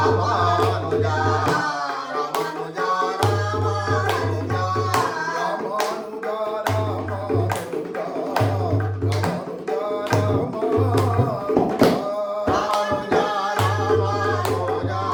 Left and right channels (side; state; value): both; identical; correlation 1.00